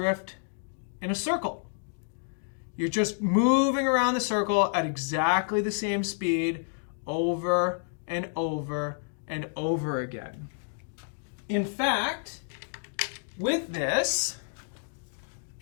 in a circle. You're just moving around the circle at exactly the same speed over and over and over again. In fact, with this,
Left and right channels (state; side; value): silent; right; digital silence